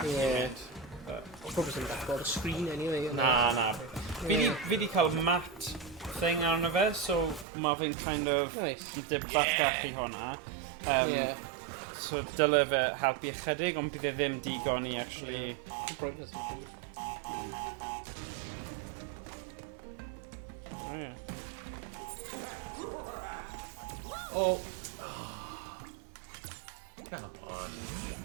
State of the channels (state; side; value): drops out; left; at 7.5 s